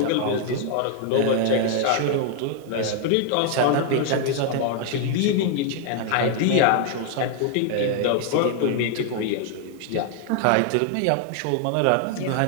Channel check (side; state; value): both; different; correlation 0.00